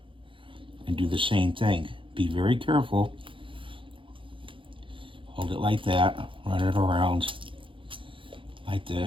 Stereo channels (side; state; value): left; late; 0.25 ms